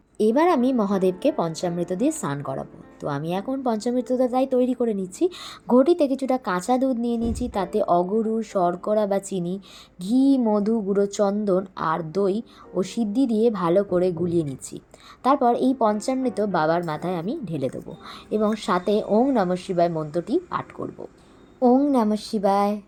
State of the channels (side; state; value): both; identical; correlation 1.00